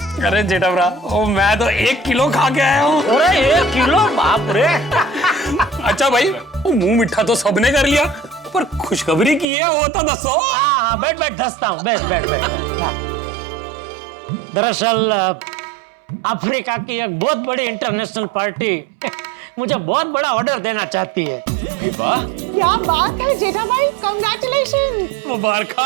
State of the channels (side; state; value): left; drops out; at 9.5 s